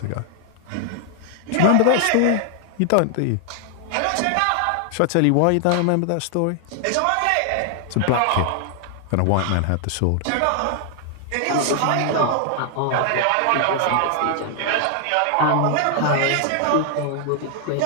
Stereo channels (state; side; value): different; both; correlation 0.00